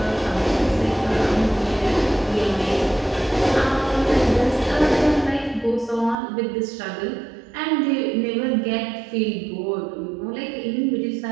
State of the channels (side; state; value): left; drops out; at 6.2 s